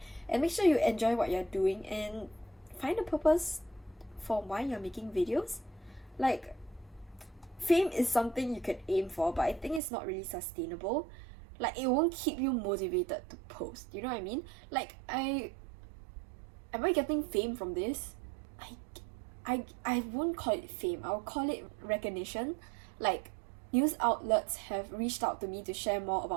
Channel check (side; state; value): left; drops out; at 9.8 s